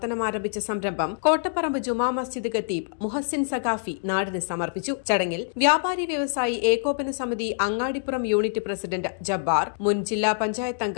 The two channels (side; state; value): right; silent; digital silence